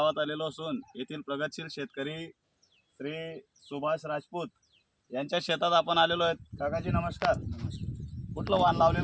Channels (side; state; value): both; identical; correlation 1.00